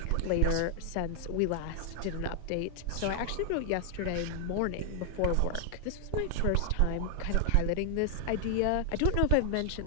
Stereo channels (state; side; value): different; both; correlation 0.00